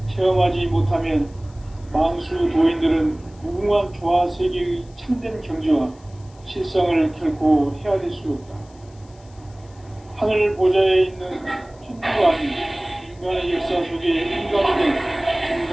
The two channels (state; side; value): noise; left; hiss, 29 dB below the sound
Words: 체험하지 못하면 만수 도인들은 무궁한 조화 세계의 참된 경지와 실상을 결코 헤아릴 수 없다. 하늘 보좌에 있는 천주가 아닌 인간의 역사 속에 인간이 된